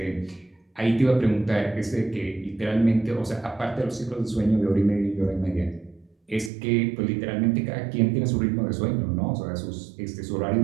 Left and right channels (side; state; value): left; drops out; at 6.5 s